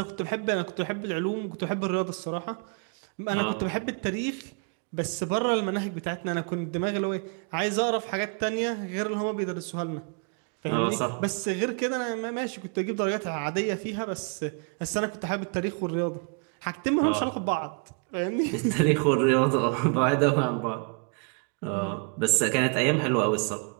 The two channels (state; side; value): quieter; left; 37.2 dB